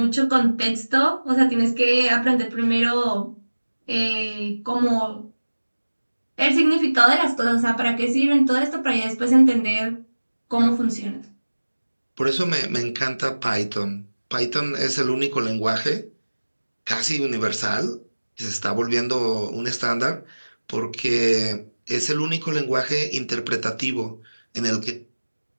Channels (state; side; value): inverted; both; correlation -1.00